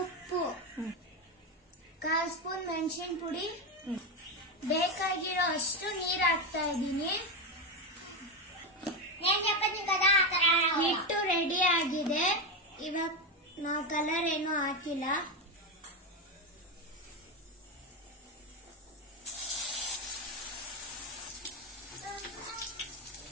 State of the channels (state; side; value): normal; both; correlation 0.12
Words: ಉಪ್ಪು, 1/4 ಸ್ಪೂನ್ ಮೆಣಸಿನ ಪುಡಿ, ಬೇಕಾಗಿರೋ ಅಷ್ಟು ನೀರು ಹಾಕ್ತಾ ಇದ್ದೀನಿ. ಹಿಟ್ಟು ರೆಡಿ ಆಗಿದೆ. ಇವಾಗ ನಾವು ಕಲರ್ ಏನು ಹಾಕಿಲ್ಲ.